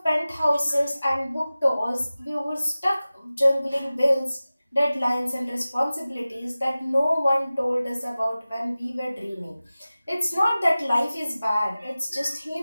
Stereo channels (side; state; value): both; inverted; correlation -0.97